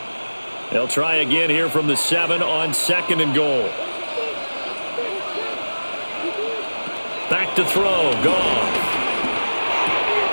They'll try again here from the 7 on second and goal. Back to throw. Gone.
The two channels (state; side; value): inverted; both; correlation -1.00